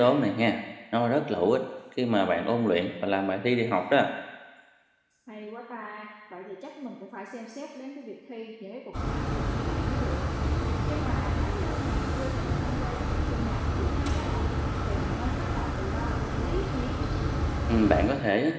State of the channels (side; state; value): both; identical; correlation 1.00